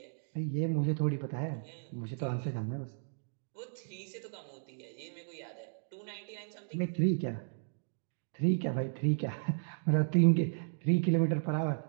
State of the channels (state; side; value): silent; left; digital silence